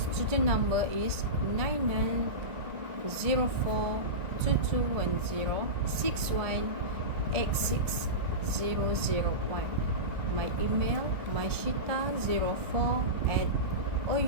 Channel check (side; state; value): left; late; 1.4 ms